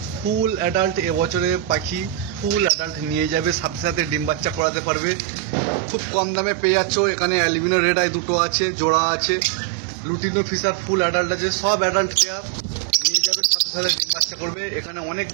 ফুল অ্যাডাল্ট এবছরে পাখি, ফুল অ্যাডাল্ট নিয়ে যাবে, সাথে সাথে ডিম বাচ্চা করাতে পারবে। খুব কম দামে পেয়ে যাচ্ছ। এখানে অ্যালবিনো রেড আই দুটো আছে, জোড়া আছে। লুটিনো ফিশার ফুল অ্যাডাল্ট আছে, সব অ্যাডাল্ট পেয়ার নিয়ে যাবে, সাথে সাথে ডিম বাচ্চা করবে। এখানে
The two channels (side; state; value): left; drops out; at 4.6 s